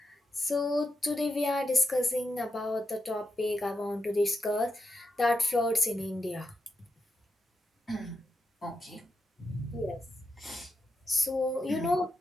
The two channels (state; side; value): normal; both; correlation 0.86